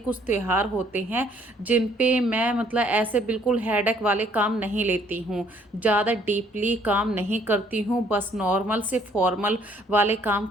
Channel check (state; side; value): normal; both; correlation 0.63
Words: त्योहार होते हैं जिन पे मैं ऐसे बिल्कुल हेडेक वाले काम नहीं लेती हूँ, ज़्यादा डीपली काम नहीं करती हूँ, बस नॉर्मल से फॉर्मल वाले काम